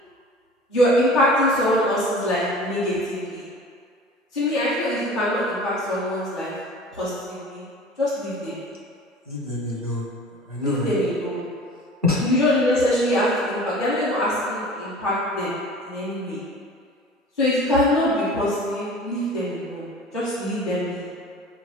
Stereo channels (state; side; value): normal; both; correlation 0.42